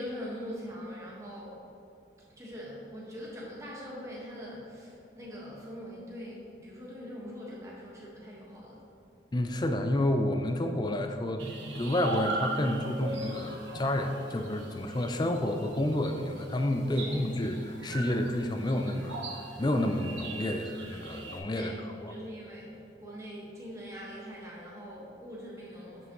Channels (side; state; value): both; normal; correlation 0.70